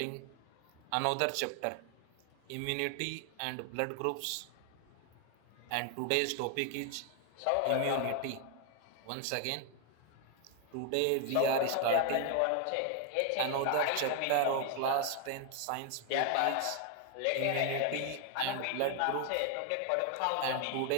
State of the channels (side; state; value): both; different; correlation 0.00